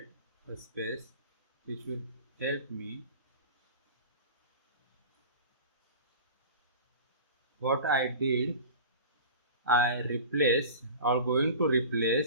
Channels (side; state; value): both; inverted; correlation -0.36